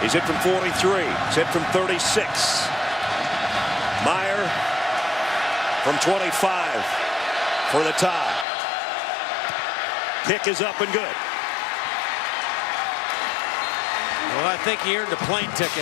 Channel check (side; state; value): right; drops out; at 8.5 s